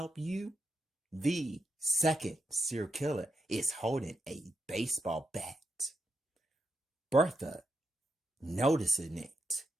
you? The second serial killer is holding a baseball bat. Bertha noticing it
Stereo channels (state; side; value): normal; both; correlation 0.83